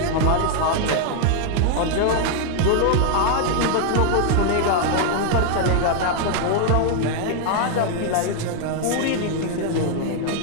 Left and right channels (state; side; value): different; both; correlation 0.00